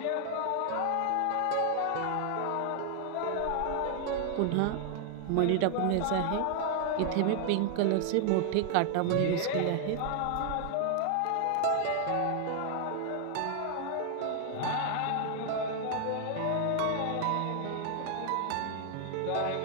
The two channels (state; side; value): different; both; correlation 0.00